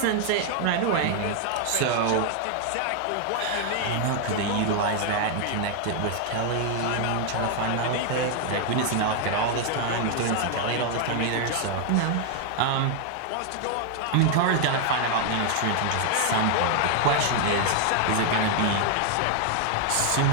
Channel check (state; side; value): different; both; correlation 0.00